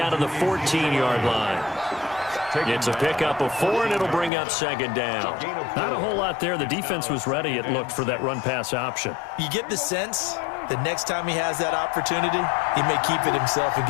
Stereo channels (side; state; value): right; drops out; at 4.3 s